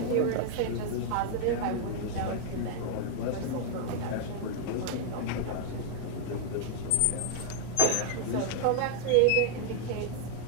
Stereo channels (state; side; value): different; both; correlation 0.00